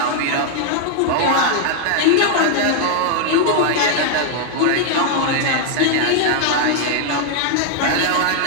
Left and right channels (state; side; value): different; both; correlation 0.00